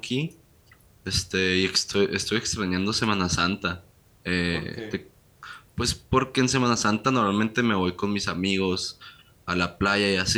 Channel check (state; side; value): identical; both; correlation 1.00